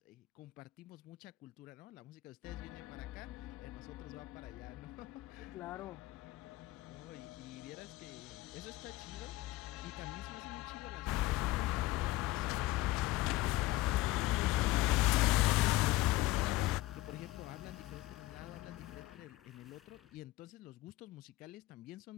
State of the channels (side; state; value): right; quieter; 18.0 dB